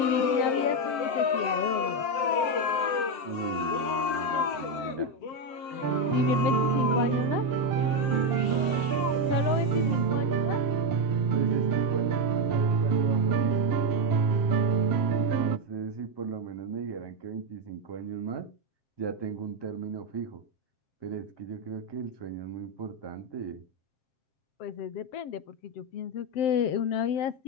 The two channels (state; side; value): late; right; 7.6 ms